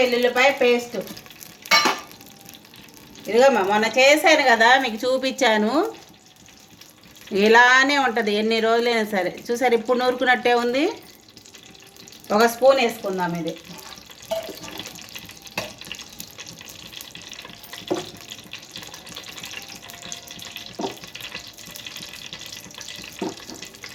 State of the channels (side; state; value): both; identical; correlation 1.00